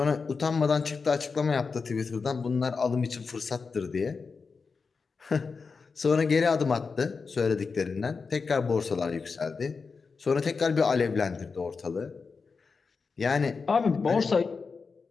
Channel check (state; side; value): quieter; right; 4.9 dB